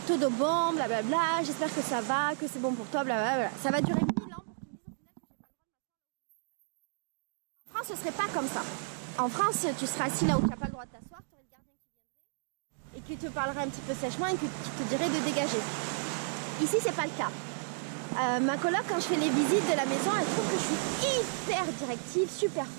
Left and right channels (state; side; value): silent; left; digital silence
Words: todo bon, blablabla, j'espère que ça va, que c'est bon pour toi, blablabla. Ça va durer 1000 ans pour qu'ils me disent au final que j'ai pas le droit de m'asseoir. En France, ce serait pas comme ça. En France, tu seras assis là où tu n'as pas le droit de t'asseoir, tu aurais le gardien qui viendrait et qui te parlerait un petit peu sèchement et qui te dirait de dégager. Ici, c'est pas le cas. Ma coloc, quand je fais les visites de la maison, elle trouve que je suis hyper directive, super